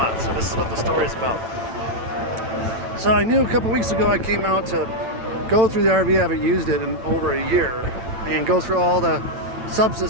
So this is what the story is about. So I knew a couple weeks ago I came out to go through the RV. I haven't used it in over a year, and go through all the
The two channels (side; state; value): left; late; 9.0 ms